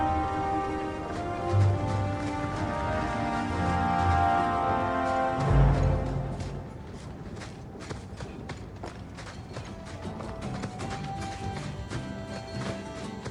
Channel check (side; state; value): both; identical; correlation 1.00